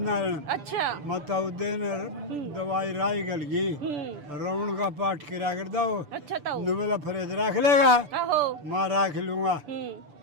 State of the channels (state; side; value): late; left; 6.9 ms